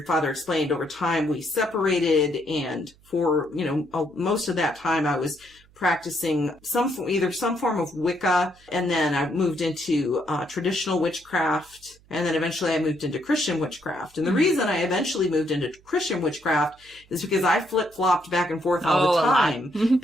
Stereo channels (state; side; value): noise; right; hum, 29 dB below the sound